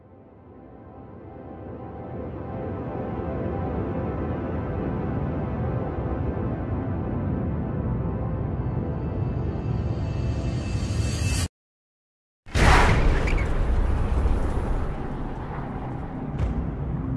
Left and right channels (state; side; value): identical; both; correlation 1.00